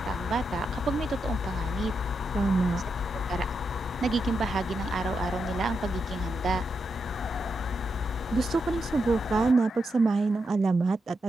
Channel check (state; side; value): normal; both; correlation 0.84